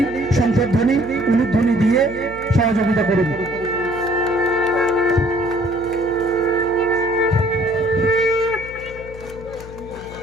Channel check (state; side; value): noise; left; hum, 15 dB below the sound